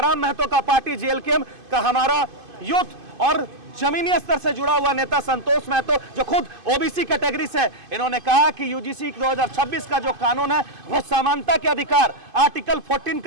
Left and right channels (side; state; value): left; late; 2.5 ms